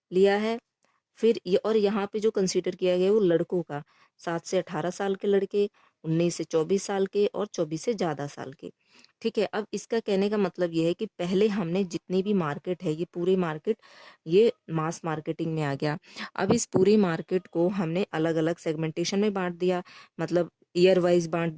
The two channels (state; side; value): identical; both; correlation 1.00